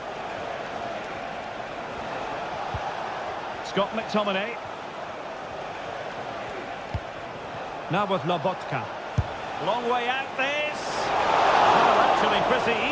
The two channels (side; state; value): both; identical; correlation 1.00